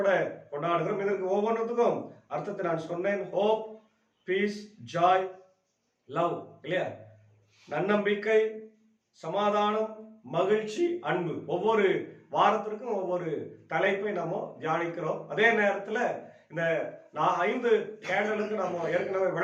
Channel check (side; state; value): both; identical; correlation 1.00